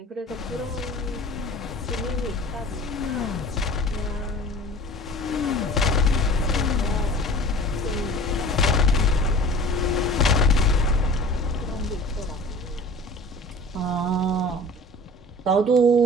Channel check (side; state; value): both; normal; correlation 0.43